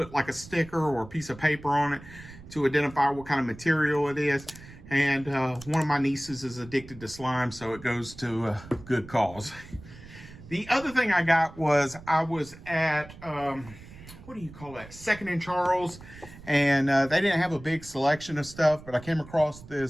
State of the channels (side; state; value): right; noise; rumble, 18 dB below the sound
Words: like a sticker or a piece of paper on it to identify what kind of material it is. And one of my nieces is addicted to slime, so it goes to a good cause. The other thing I got was I was at, what do you call that? Second and Charles, and they didn't have a big selection of stuff, but I came across